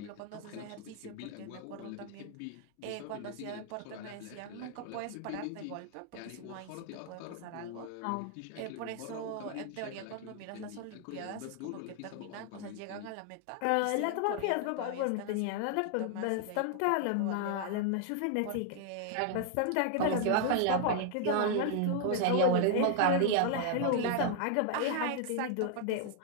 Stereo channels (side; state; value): both; different; correlation 0.00